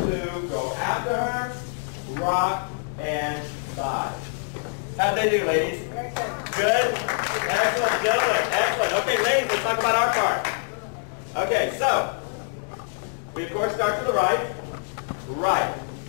go after her, rock, and side. How'd they do, ladies? Good? Excellent, gentlemen. Excellent. Okay, ladies, let's talk about our part. Okay, so, we of course start to the right. Right.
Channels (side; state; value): right; silent; digital silence